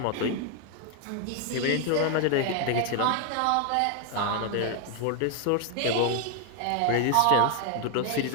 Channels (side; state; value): both; different; correlation 0.00